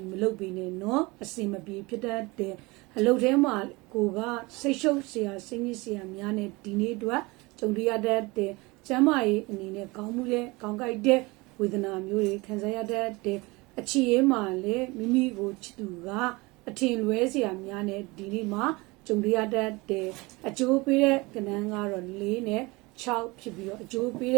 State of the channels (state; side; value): quieter; left; 24.2 dB